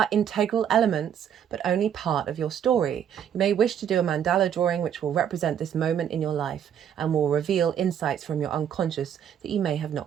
integral elements, but only part of your story. You may wish to do a mandala drawing which will represent this moment in your life and will reveal insights from your unconscious that you may have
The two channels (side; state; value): left; quieter; 9.1 dB